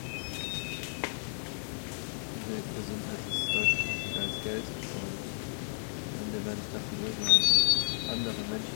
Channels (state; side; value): silent; right; digital silence